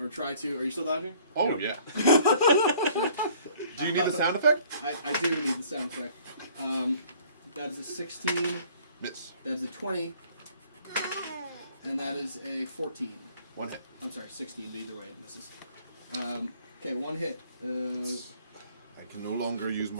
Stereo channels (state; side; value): inverted; both; correlation -0.56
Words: try to. Are you still dodging? Oh, yeah. Do you need the sound effect? I do need the sound effect. That is a 16. Miss. That is a 20. And that is a 14. 1 hit. I'm sorry, 16. Either way, it misses. Okay, 1 hit. I can no longer use